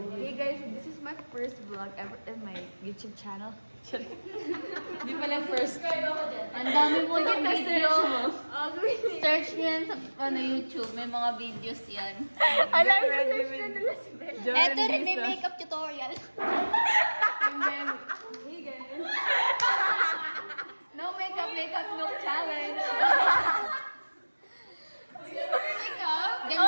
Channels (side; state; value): both; inverted; correlation -1.00